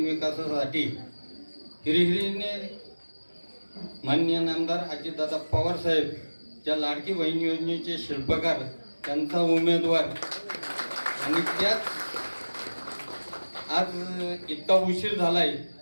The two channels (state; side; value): inverted; both; correlation -1.00